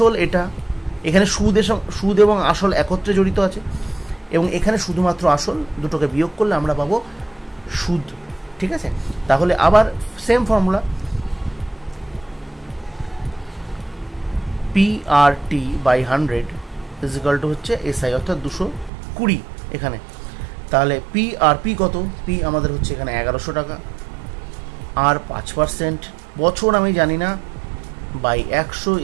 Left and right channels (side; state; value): left; drops out; at 18.9 s